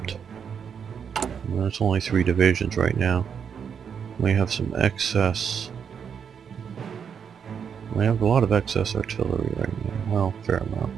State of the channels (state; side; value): quieter; left; 7.2 dB